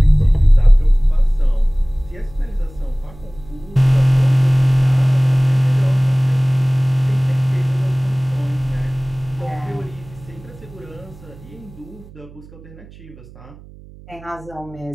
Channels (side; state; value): right; noise; hum, 21 dB below the sound